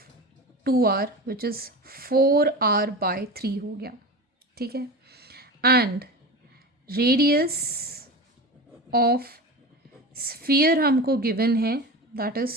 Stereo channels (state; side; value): normal; both; correlation 0.28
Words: 2r which is 4r/3 हो गया. ठीक है. एंड रेडियस ऑफ स्फीयर हमको गिवन है दैट